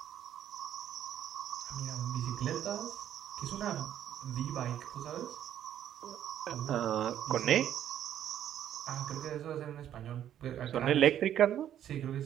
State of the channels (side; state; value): left; quieter; 10.7 dB